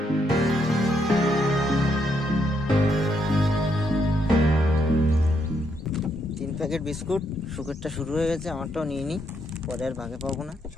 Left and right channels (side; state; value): both; normal; correlation 0.76